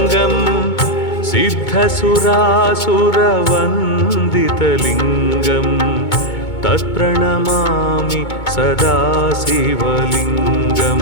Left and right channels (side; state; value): right; late; 2.2 ms